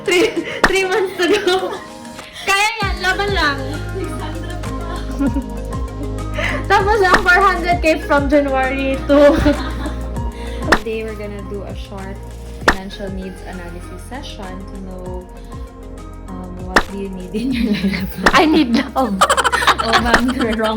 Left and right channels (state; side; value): identical; both; correlation 1.00